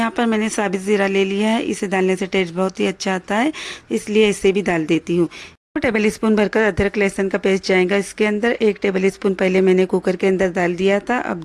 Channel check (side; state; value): both; identical; correlation 1.00